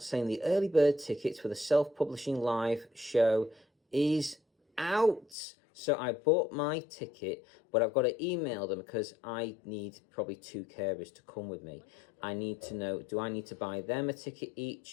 the early bird tickets for the self-publishing live show is out. So I bought my ticket, but I've got to email them because I need probably 2 carers to come with me. I need to know, do I need to buy them a ticket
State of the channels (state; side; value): drops out; right; at 5.4 s